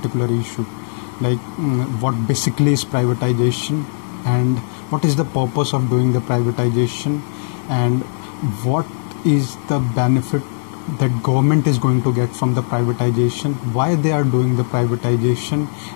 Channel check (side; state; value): right; silent; 59 dB below the other